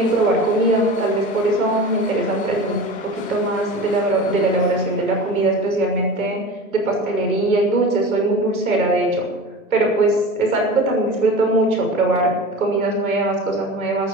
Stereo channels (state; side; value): normal; both; correlation 0.34